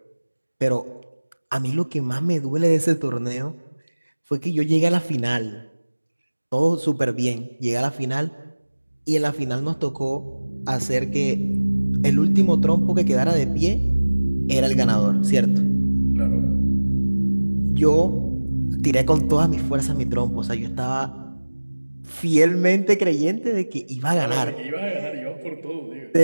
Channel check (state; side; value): inverted; both; correlation -1.00